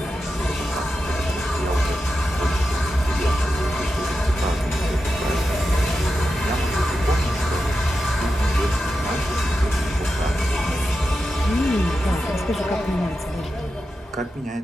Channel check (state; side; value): normal; both; correlation 0.90